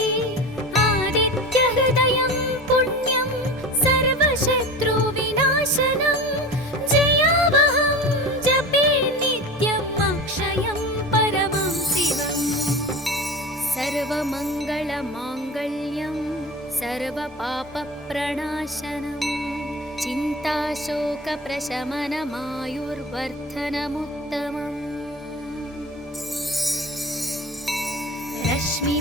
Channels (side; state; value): both; normal; correlation 0.32